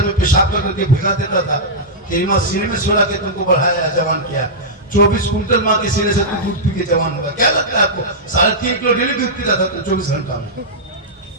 में पेशाब करके भिगा देता था, तेरी माँ सीने में सुला के तुमको बढ़ाया, जवान किया। 24 कुंटल माँ के सीने से तुम दूध पी के जवान होगा। क्या लगता है आपको? 3.5 किलो डेली दूध पीता था तुम 24 घंटा में,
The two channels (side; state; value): both; normal; correlation -0.11